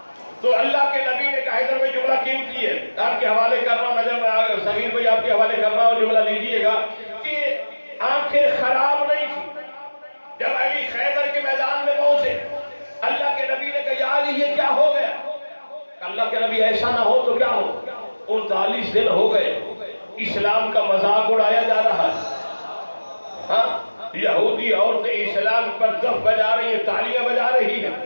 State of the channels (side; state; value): both; inverted; correlation -1.00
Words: تو اللہ کے نبی نے کہا ادھر میں جملہ قیمتی ہے آپ کے حوالے کر رہا ہوں، نظر سمیر بھائی آپ کے حوالے کر رہا ہوں، جملہ لیجئے گا کہ آنکھیں خراب نہیں تھی. جب علی خیبر کے میدان میں پہنچے اللہ کے نبی نے کہا یا علی یہ کیا ہو گیا؟ اللہ کے نبی ایسا نہ ہو تو کیا ہو، 39 دن ہو گئے اسلام کا مذاق اڑایا جا رہا ہے. ہاں یہودی عورتیں اسلام پر دف بجا رہی ہیں، تالیاں بجا رہی ہیں،